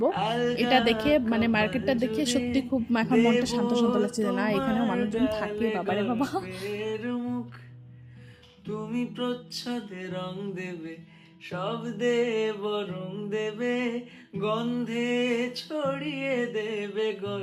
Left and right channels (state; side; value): identical; both; correlation 1.00